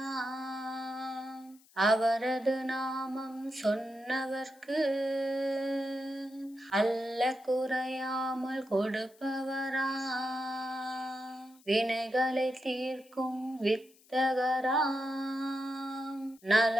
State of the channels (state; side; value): noise; left; hiss, 28 dB below the sound